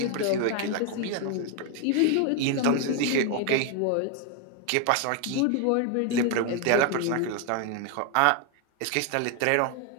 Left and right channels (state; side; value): different; both; correlation 0.01